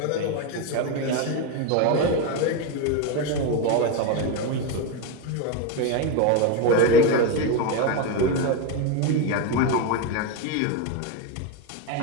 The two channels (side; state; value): both; different; correlation 0.03